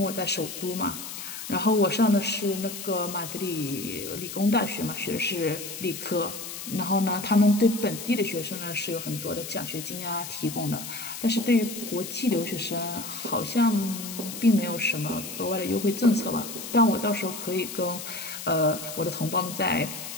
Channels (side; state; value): left; noise; hiss, 9 dB below the sound